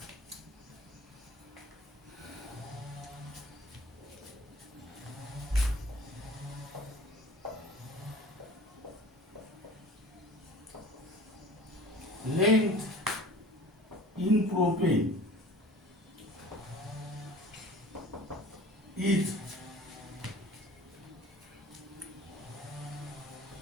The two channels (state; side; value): normal; both; correlation 0.44